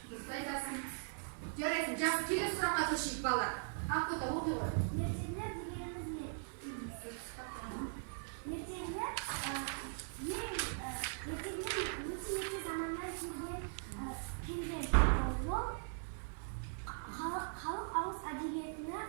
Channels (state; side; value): silent; left; 51 dB below the other